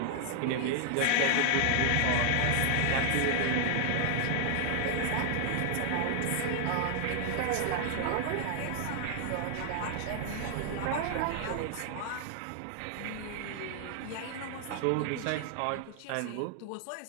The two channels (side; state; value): both; different; correlation 0.00